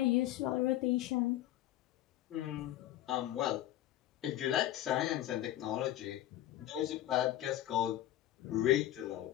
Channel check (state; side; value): quieter; right; 13.6 dB